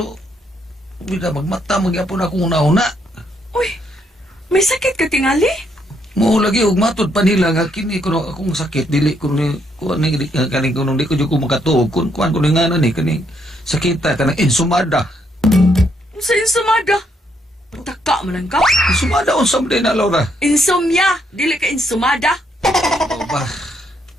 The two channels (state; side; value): normal; both; correlation 0.74